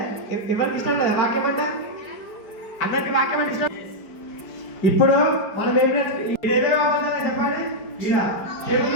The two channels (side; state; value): right; late; 4.8 ms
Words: ఎవరికి ఇష్టం కదా వాక్యం అంటే? అందరికి వాక్యం అంటే ఇష్టం. ఇప్పుడు మనం ఏమేమి అవ్వాలని చెప్పండి. ఇలా తెలుగు